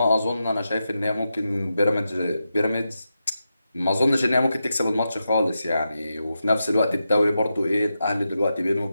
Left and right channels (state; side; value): inverted; both; correlation -0.88